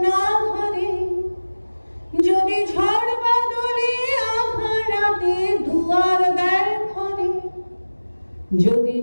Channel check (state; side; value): inverted; both; correlation -1.00